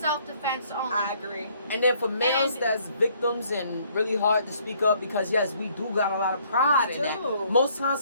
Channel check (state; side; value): inverted; both; correlation -0.64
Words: only. I agree. And then for males that's victims and really hard to speak up because yes, we do got a lot of pride in that. Most times